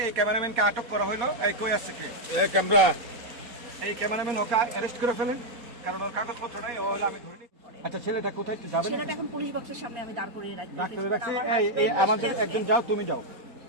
এই ক্যামেরাম্যানকে আটক করা হলো। এই কই আসছে কি ক্যামেরা এই ক্যামেরাম্যান ওকে অ্যারেস্ট করে ফেলেন, কারণ ওর কাগজপত্র নাই। ও হলো আমি ধরে নিই। আচ্ছা, ছেলেটা কোথায় একটু যাবেন? ছেলেটা এখন পুলিশ বক্সের সামনে আমি দাঁড় করিয়ে রাখছি। এই আমাদের একজন যাও, তুমি যাও,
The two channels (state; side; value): late; left; 4.2 ms